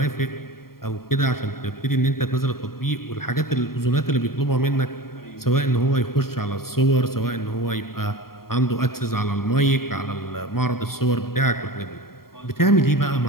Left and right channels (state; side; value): late; right; 0.93 ms